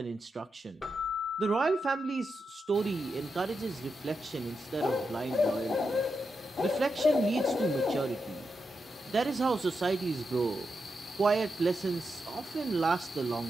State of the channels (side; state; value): both; normal; correlation 0.86